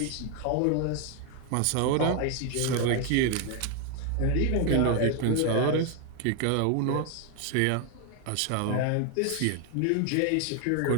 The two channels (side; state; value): both; different; correlation 0.01